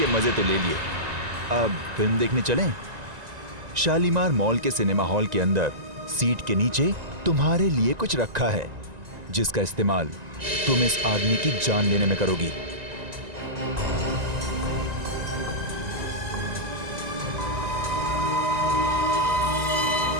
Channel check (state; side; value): late; left; 1.9 ms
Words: मजे तो ले लिए, अब फिल्म देखने चलें? शालीमार मॉल के सिनेमा हॉल के अंदर सीट के नीचे तुम्हारे लिए कुछ रखा है, जिसका इस्तेमाल तुम इस आदमी की जान लेने में करोगी।